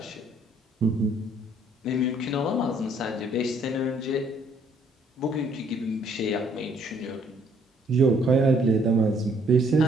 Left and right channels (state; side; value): normal; both; correlation 0.65